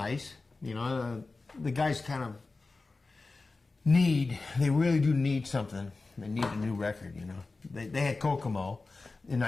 you know. The guys kind of they really do need something. They need a new record, you know. They had Kokomo in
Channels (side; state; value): right; quieter; 3.7 dB